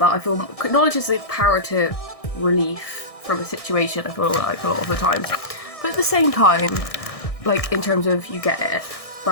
I feel knowledge is the power to relief from a situation, I feel like a lot of the time. But at the same time, like in terms of you get it,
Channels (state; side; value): late; right; 1.6 ms